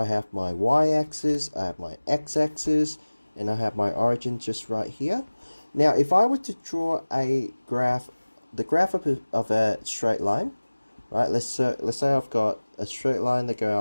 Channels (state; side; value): inverted; both; correlation -1.00